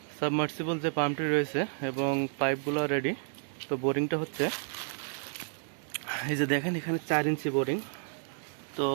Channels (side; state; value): left; silent; digital silence